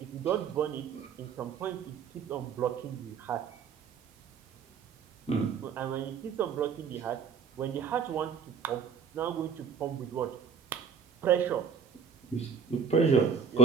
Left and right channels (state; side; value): quieter; left; 6.9 dB